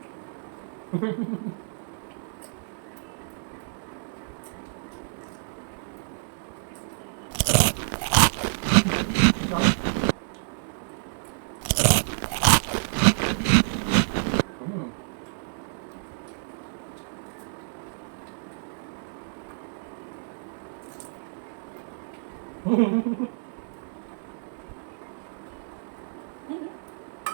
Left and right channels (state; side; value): silent; left; digital silence